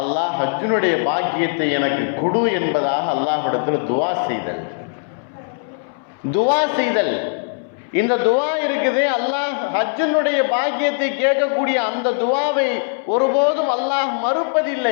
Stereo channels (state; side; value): silent; right; 66 dB below the other